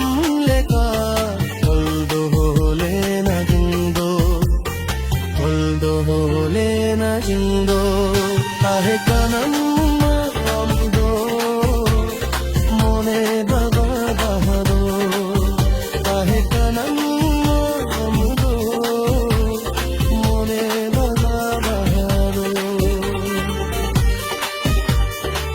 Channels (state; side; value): identical; both; correlation 1.00